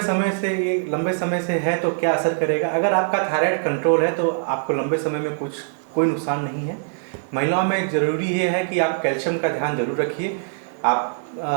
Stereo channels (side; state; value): left; silent; digital silence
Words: समय से है तो क्या असर करेगा? अगर आपका थायराइड कंट्रोल है तो आपको लंबे समय में कोई नुकसान नहीं है। महिलाओं में ज़रूरी ये है कि आप कैल्शियम का ध्यान जरूर रखिए। आप